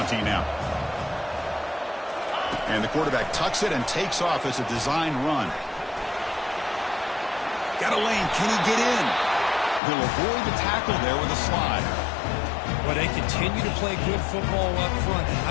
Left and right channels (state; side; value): drops out; right; at 9.8 s